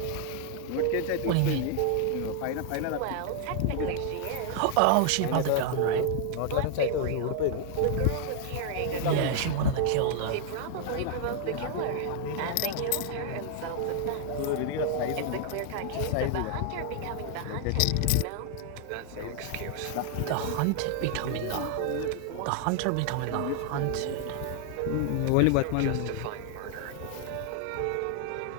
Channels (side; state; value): both; different; correlation 0.00